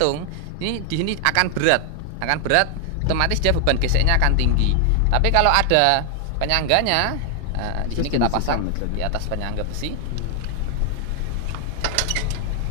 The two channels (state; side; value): different; both; correlation 0.00